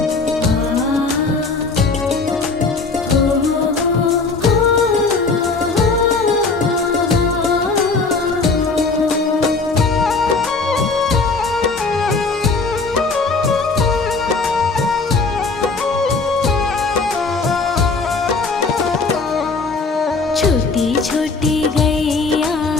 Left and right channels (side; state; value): right; quieter; 4.1 dB